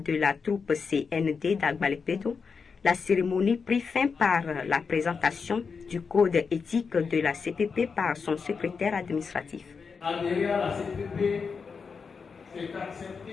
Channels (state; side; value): quieter; right; 5.4 dB